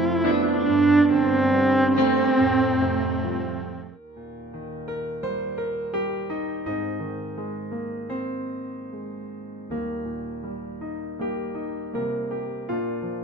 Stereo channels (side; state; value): both; normal; correlation 0.56